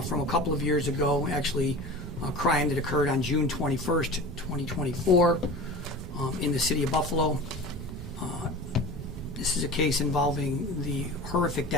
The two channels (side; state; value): both; normal; correlation 0.35